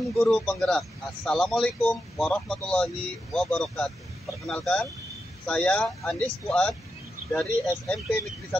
guru penggerak. Assalamualaikum warahmatullahi wabarakatuh. Perkenalkan, saya Andis Fuad dari SMP Negeri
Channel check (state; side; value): normal; both; correlation 0.87